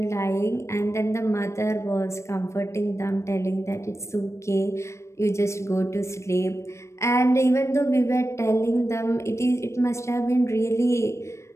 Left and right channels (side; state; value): right; late; 0.13 ms